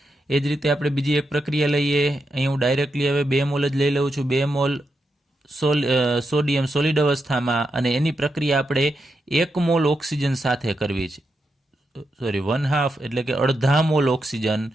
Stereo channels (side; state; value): both; normal; correlation 0.85